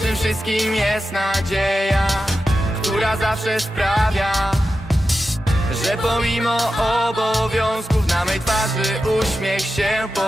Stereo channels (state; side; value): normal; both; correlation 0.91